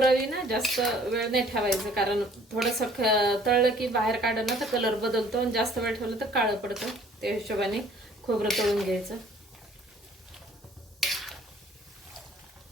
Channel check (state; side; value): normal; both; correlation 0.56